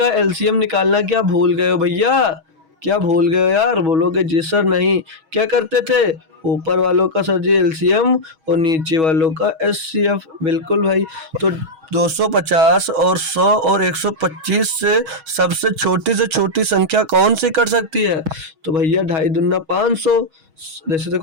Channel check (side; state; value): left; late; 6.3 ms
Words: एलसीएम निकालना क्या भूल गए हो भैया? क्या भूल गए हो यार? बोलोगे जी सर नहीं। क्या करते थे, ऊपर वालों का सर जी एलसीएम और नीचे वालों का एचसीएफ। बिल्कुल भाई। तो 250 और 100 और 125 से सबसे छोटी संख्या कौन सी कर सकती है? तो भैया 2.5 दूना 500। जैसे